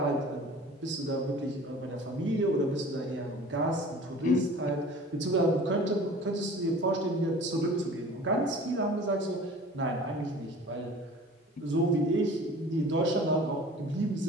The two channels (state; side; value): normal; both; correlation 0.44